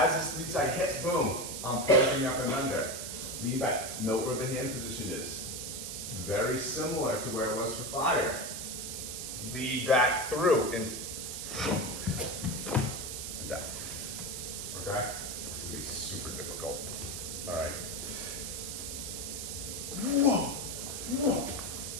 this lead side hits, boom, I'm pushing up and under. Lean back. Note where the hand position is. Very similar to where it was for fire. Lead back through into like that. Okay? This is gonna be super difficult. All right. Whoa. Whoa.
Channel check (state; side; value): noise; right; hiss, 6 dB below the sound